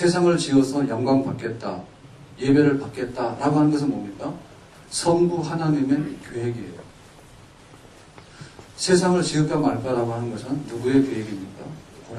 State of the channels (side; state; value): both; identical; correlation 1.00